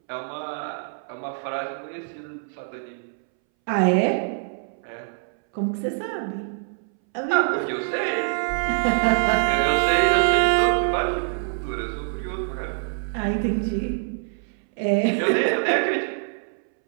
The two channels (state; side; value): silent; left; 62 dB below the other